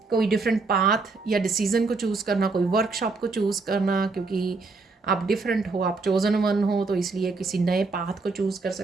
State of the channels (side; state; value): left; quieter; 4.0 dB